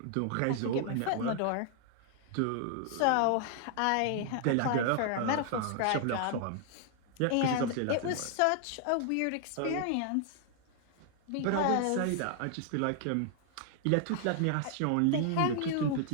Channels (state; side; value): different; both; correlation 0.00